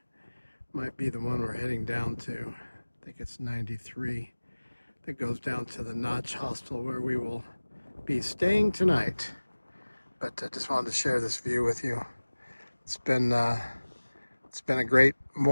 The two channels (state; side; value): inverted; both; correlation -1.00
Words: might be the one we're heading down to. I think it's 93. That goes down to the Notch Hostel where we will be staying tonight. But I just wanted to share this view with you. It's been a great